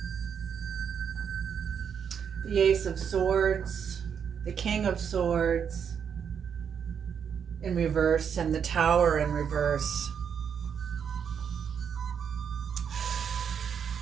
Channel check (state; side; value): quieter; left; 7.5 dB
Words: the Ace of Swords, the King of Swords in reverse, and the Tower in reverse.